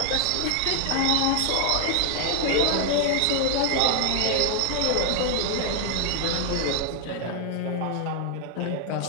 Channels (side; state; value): both; different; correlation 0.00